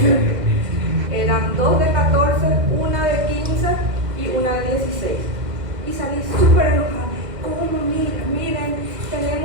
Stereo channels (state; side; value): late; left; 2.0 ms